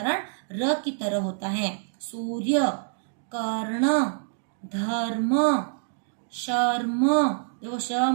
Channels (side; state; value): left; silent; digital silence